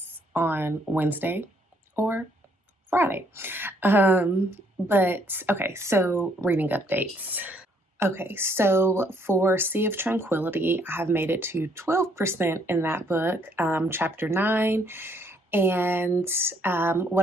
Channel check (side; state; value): both; normal; correlation 0.68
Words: on Wednesday or Friday. But okay, so reading updates. Okay, so for Sea of Tranquility, I have made it to 12% in that book, chapter 9. And